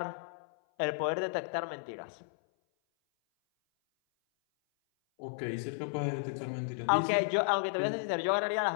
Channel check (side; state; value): right; silent; 56 dB below the other